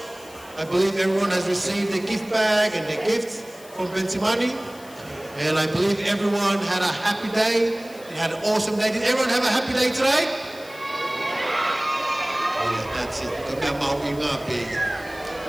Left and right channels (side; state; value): left; noise; hiss, 21 dB below the sound